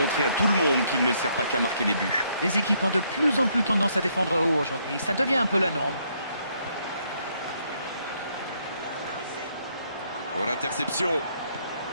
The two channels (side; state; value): both; inverted; correlation -0.71